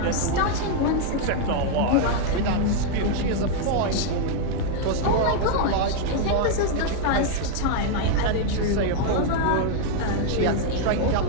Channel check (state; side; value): different; both; correlation 0.00